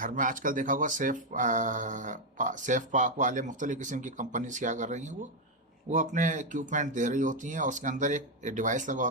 में आजकल देखा होगा सेफ पाक वाले मुख्तलिफ किस्म की कंपनीज क्या कर रही हैं, वो अपने इक्विपमेंट दे रही होती हैं, और उसके अंदर एक डिवाइस लगा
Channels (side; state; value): both; normal; correlation 0.03